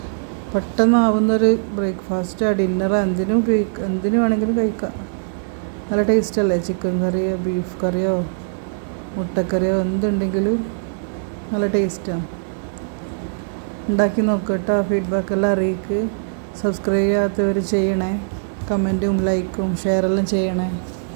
പെട്ടെന്നാവുന്നൊരു ബ്രേക്ക്ഫാസ്റ്റ്, ഡിന്നർ, എന്തിനും വേണമെങ്കിലും കഴിക്കാം. നല്ല ടേസ്റ്റല്ലേ? ചിക്കൻ കറിയോ ബീഫ് കറിയോ മുട്ടക്കറിയോ എന്തുണ്ടെങ്കിലും നല്ല ടേസ്റ്റാണ്. ഉണ്ടാക്കി നോക്കട്ടോ. ഫീഡ്ബാക്കെല്ലാം അറിയിക്ക്. സബ്സ്ക്രൈബ് ചെയ്യാത്തവർ ചെയ്യണേ. കമൻറ്റും ലൈക്കും ഷെയറെല്ലാം ചെയ്യണേ.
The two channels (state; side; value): silent; left; digital silence